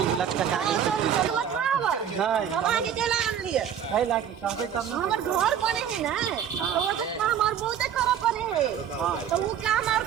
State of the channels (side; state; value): left; quieter; 8.9 dB